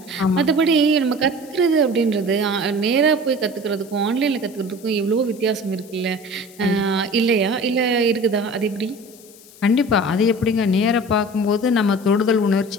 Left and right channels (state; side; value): noise; left; hiss, 23 dB below the sound